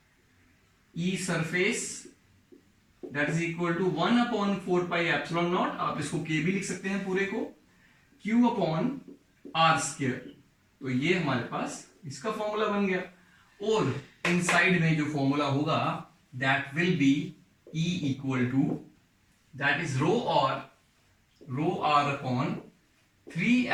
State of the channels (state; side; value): identical; both; correlation 1.00